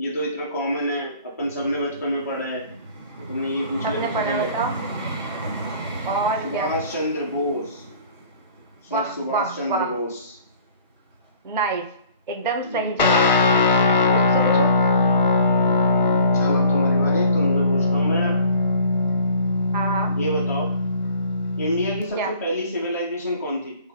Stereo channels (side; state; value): both; inverted; correlation -0.53